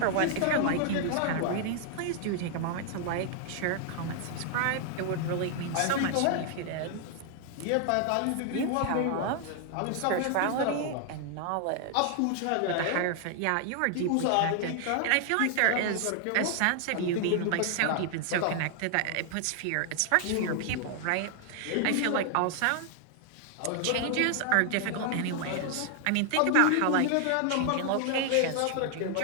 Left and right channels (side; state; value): both; different; correlation 0.00